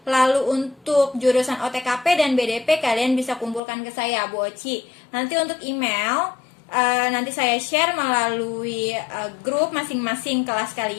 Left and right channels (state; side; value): drops out; right; at 3.6 s